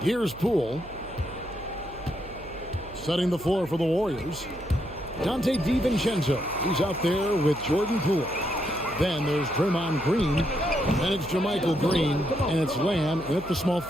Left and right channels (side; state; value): right; noise; hum, 18 dB below the sound